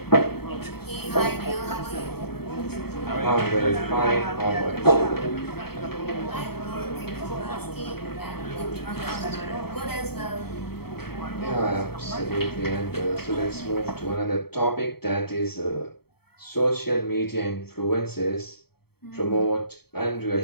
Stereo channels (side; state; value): right; late; 0.96 ms